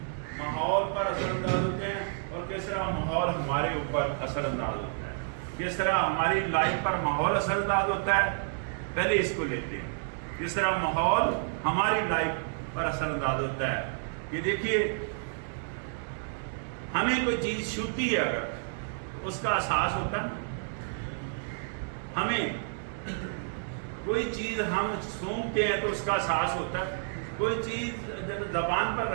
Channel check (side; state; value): left; silent; 58 dB below the other